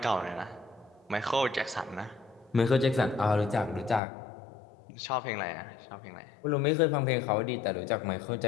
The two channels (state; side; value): drops out; right; at 4.0 s